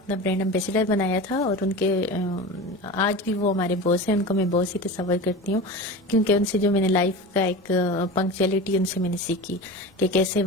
برانڈ ایمبیسڈر بنایا تھا, اور ان کے آج بھی وہ ہمارے باس ہیں, ان کو میں باس ہی تصور کرتی ہوں کیونکہ ان سے جو میں نے لائف کا ایک پنکچوئلٹی ان سے میں نے سیکھی کہ کیسے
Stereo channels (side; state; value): both; normal; correlation 0.30